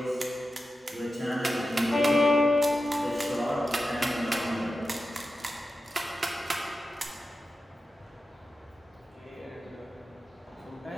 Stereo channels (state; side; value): normal; both; correlation 0.91